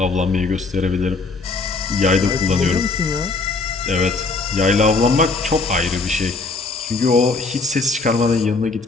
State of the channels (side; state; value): right; quieter; 3.8 dB